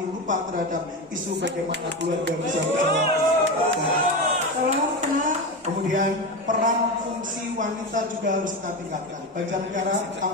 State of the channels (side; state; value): both; normal; correlation 0.20